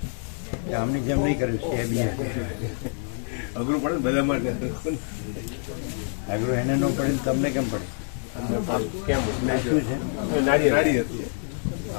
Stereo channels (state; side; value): silent; right; 61 dB below the other